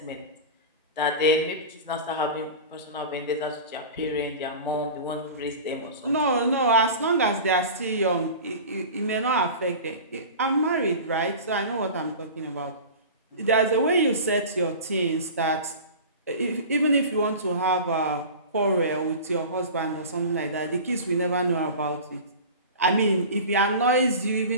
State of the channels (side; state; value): both; inverted; correlation -0.34